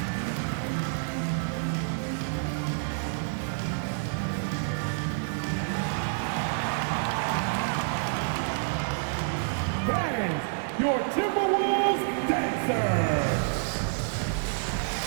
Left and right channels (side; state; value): left; silent; digital silence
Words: Your Timberwolves dancers.